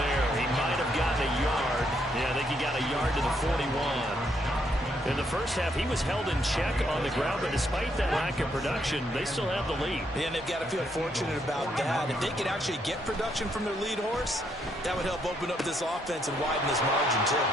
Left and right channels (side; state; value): both; normal; correlation 0.74